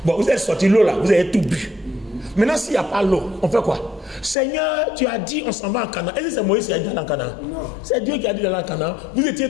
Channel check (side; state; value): right; drops out; at 4.4 s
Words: Bon, vous êtes sorti l'eau là, vous avez tout bu. Maintenant, s'il n'y a pas l'eau, on fait quoi? Seigneur, tu as dit on s'en va en Canaan. Est-ce que c'est Moïse qui a dit d'aller en Canaan? Non. C'est Dieu qui a dit d'aller en Canaan. Vous étiez